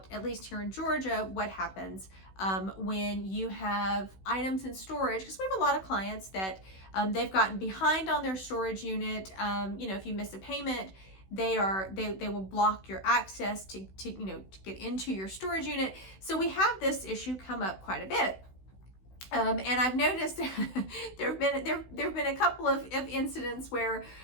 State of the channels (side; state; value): right; late; 16 ms